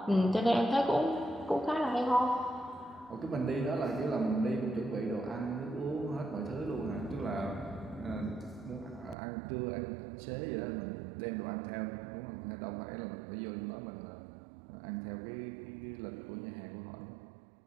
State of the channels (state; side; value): drops out; left; at 9.2 s